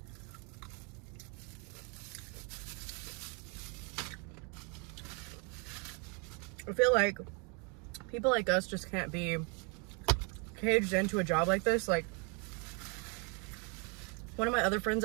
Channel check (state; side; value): quieter; left; 34.1 dB